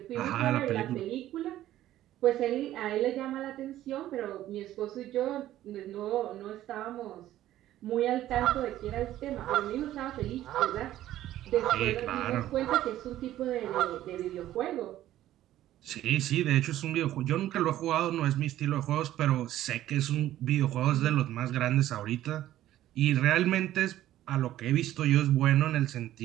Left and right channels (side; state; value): left; quieter; 13.5 dB